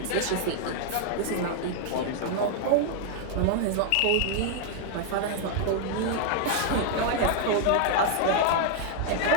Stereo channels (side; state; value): both; different; correlation 0.00